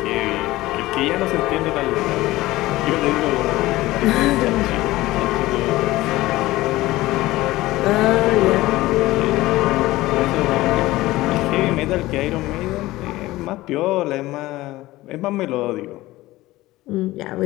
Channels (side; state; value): right; quieter; 17.9 dB